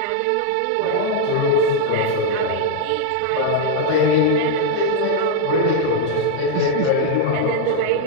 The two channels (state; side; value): different; both; correlation 0.00